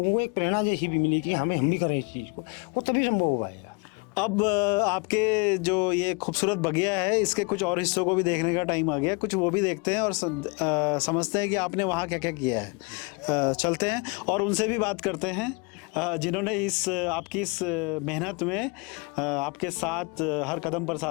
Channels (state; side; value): quieter; right; 31.5 dB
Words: को एक प्रेरणा जैसी भी मिलेगी, हम भी करें इस चीज़ को, वो तभी संभव हो पाएगा। अब आपके जो ये खूबसूरत बगिया है, इसके कुछ और हिस्सों को भी देखने का टाइम आ गया, कुछ वो भी देखते हैं और समझते हैं कि आपने वहाँ क्या क्या किया है। चलते हैं और उनसे भी बात करते हैं जिन्होंने आपकी इस मेहनत में आपके साथ हर कदम पर